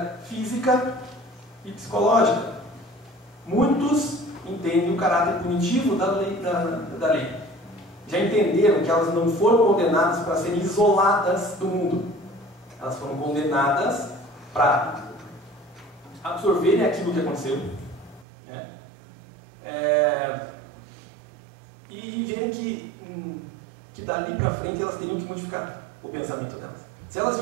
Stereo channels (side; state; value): left; drops out; at 18.2 s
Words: física e psicológica. Muitos entendem o caráter punitivo da lei. Já entenderam que elas não foram condenadas para serem isoladas do mundo. Elas foram condenadas para absorverem aquilo que aconteceu, e verem que dali para frente elas teriam que modificar o pensamento delas. Se elas